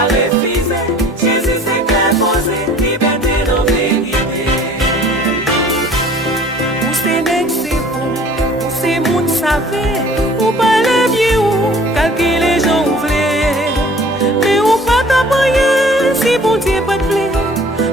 refuser. Jésus c'est qu'un posé, liberté de vérité. Ou c'est nèg c'est bon, ou c'est moun savait, ou pas les vieux ou calculer les gens ou vle. Mais ou pas t'apprendre si bon Dieu pas te plaît.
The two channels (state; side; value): normal; both; correlation 0.50